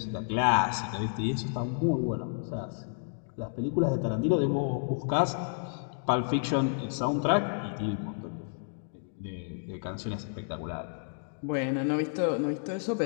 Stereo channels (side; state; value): right; silent; digital silence